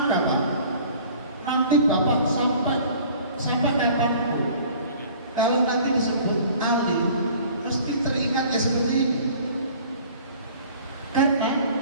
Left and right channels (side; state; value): both; inverted; correlation -0.49